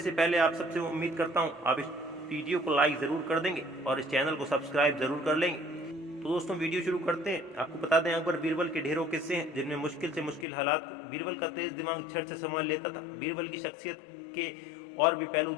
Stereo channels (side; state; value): right; drops out; at 10.5 s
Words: से पहले आप सबसे उम्मीद करता हूं आप इस वीडियो को लाइक ज़रूर कर देंगे और इस चैनल को सब्सक्राइब ज़रूर कर लेंगे। तो दोस्तों, वीडियो शुरू करते हैं। आपको बता दें, अकबर बीरबल के ढेरों किस्से हैं जिनमें मुश्किल से मुश्किल हालात बीरबल का तेज दिमाग झट से संभाल लेता था। बीरबल की शख्सियत के और भी पहलू